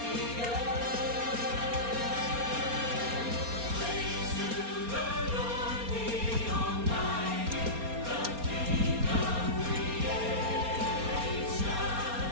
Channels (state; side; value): late; left; 4.3 ms